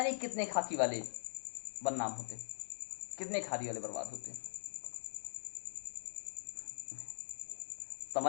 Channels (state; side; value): silent; right; digital silence